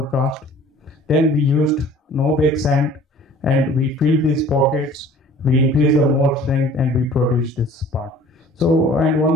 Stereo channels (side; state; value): both; normal; correlation 0.49